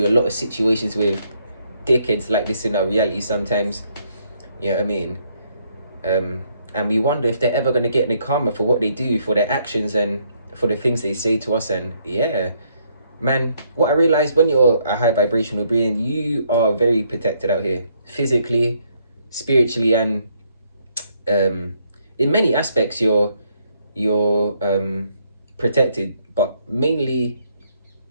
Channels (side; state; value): both; inverted; correlation -0.71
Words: a lot of situations with dickheads like this in our reality sometimes. You know what I mean? And we wonder if they're ever going to get any karma for what they do, for their actions and for the things they say to us. And yeah, man, what I realized, when you're a high vibrational being, you are very protected out here, physically, spiritually, and in many aspects you're protected, but mainly